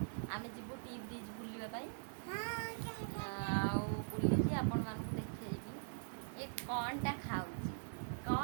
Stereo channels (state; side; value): silent; left; digital silence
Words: ଆମେ ଯିବୁ ଟି ବ୍ରିଜ୍ ବୁଲିବା ପାଇଁ। ଆଉ ବୁଲିକି ଆପଣମାନଙ୍କୁ ଦେଖେଇବି ଏ କ'ଣଟା ଖାଉଛି,